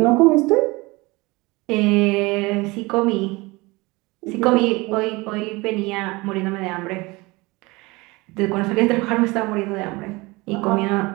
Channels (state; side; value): quieter; left; 23.4 dB